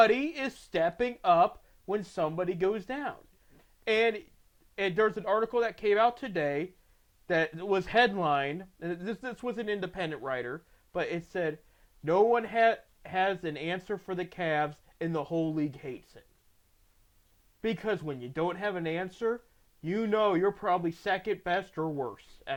is stepping up when somebody goes down. And there's an article that came out today that was headlined. And this was an independent writer, but it said no one had has an answer for the Cavs, and the whole league hates it. Because when you don't have an answer, you know you're probably second best or worse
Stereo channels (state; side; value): identical; both; correlation 1.00